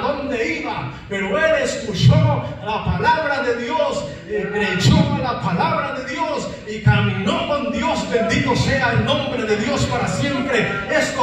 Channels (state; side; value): identical; both; correlation 1.00